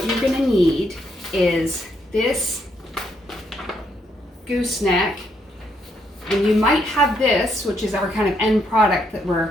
you're going to need is this gooseneck. And you might have this, which is our kind of end product that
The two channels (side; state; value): both; normal; correlation 0.75